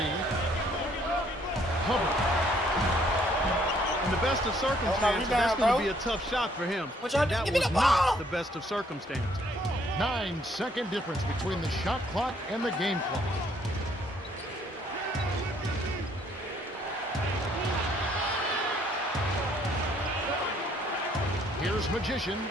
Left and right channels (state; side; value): normal; both; correlation 0.65